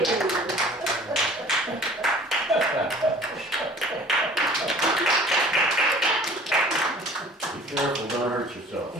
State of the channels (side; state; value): both; normal; correlation 0.48